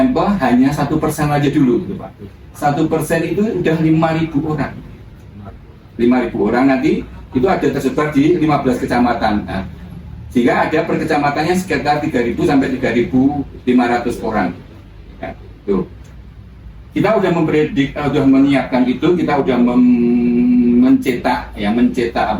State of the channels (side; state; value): both; identical; correlation 1.00